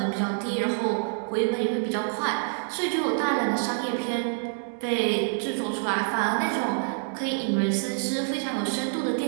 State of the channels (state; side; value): silent; left; digital silence